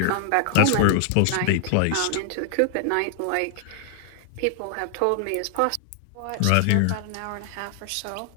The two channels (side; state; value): both; different; correlation 0.00